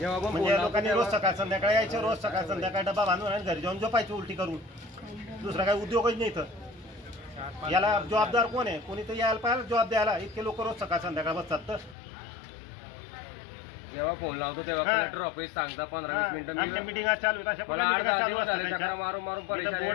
लोकांनी रोज सकाळ संध्याकाळी यायचं, रोज सकाळ संध्याकाळी डबा बांधून आणि घरी जाऊन झोपायचं उलटी करून। दुसरा काही उद्योगच नाही तर याला जबाबदार कोण आहे? कोणी तर यायला पाहिजे जबाब द्यायला। इतके लोक रोज सकाळ संध्याकाळ बसतात तर जेव्हा फोन लावतो तेव्हा कलेक्टर ऑफिस सांगता 15-20 मिनिटं मीटिंग चालू आहे। मला 8-10 दिवस झाले चक्रा मारून परेशान।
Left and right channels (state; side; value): drops out; right; at 12.0 s